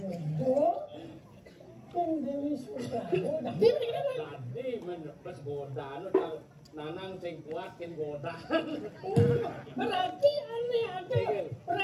ke Dewi Suprabo tadi menepes godaan Nanang sing kuat kin godaan berarti aneh ada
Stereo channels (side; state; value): both; identical; correlation 1.00